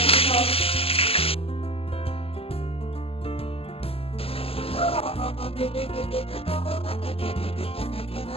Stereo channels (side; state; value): right; late; 0.28 ms